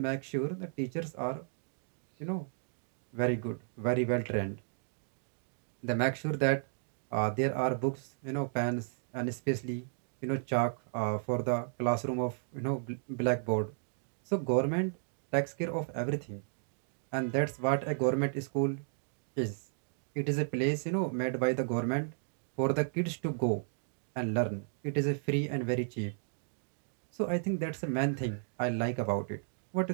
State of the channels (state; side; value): silent; left; digital silence